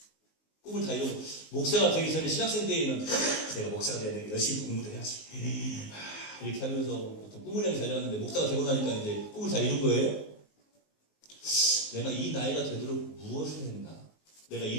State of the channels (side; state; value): right; late; 19 ms